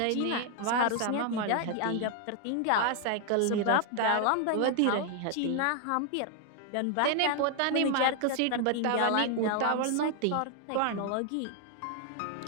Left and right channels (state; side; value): different; both; correlation 0.00